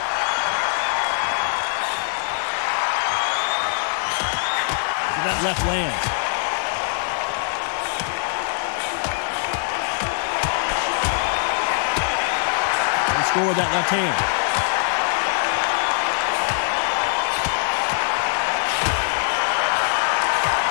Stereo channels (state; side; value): silent; right; digital silence